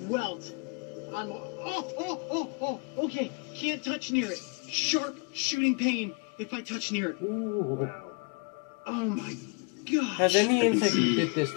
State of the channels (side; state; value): right; quieter; 33.2 dB